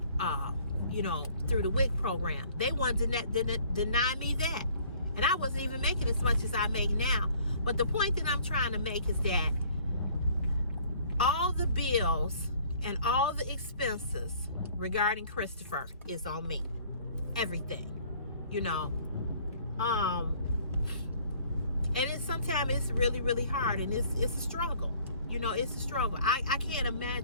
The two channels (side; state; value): both; inverted; correlation -0.56